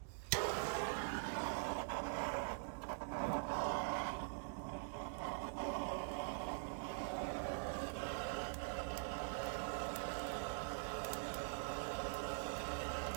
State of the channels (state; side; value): silent; left; digital silence